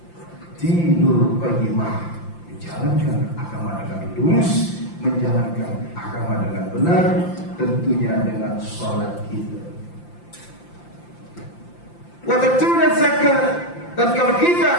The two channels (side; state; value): right; late; 5.8 ms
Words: Dinul qayyimah, menjalankan agama dengan lurus, menjalankan agama dengan benar, tentunya dengan sholat kita. Wa tatuna zakat. Dan kalau